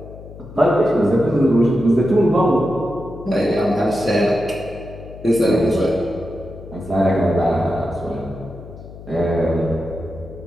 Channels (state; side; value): noise; left; hum, 16 dB below the sound